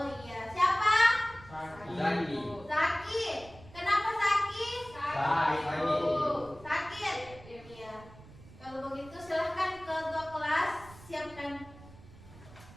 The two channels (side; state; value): right; noise; rumble, 20 dB below the sound